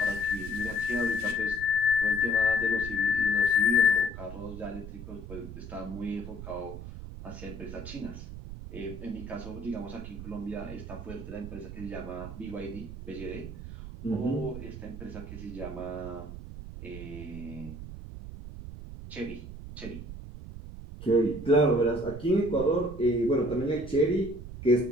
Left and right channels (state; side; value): noise; right; rumble, 11 dB below the sound